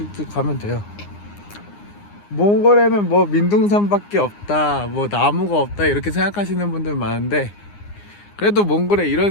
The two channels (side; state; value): right; late; 9.7 ms